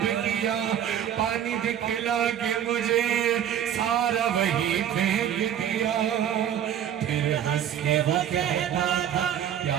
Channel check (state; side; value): quieter; left; 9.8 dB